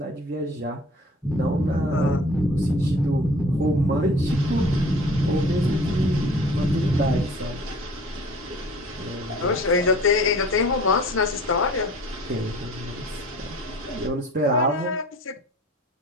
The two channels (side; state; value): both; normal; correlation 0.46